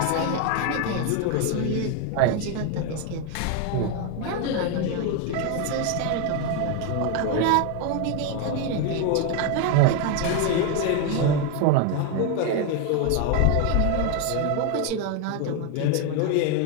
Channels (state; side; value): different; both; correlation 0.01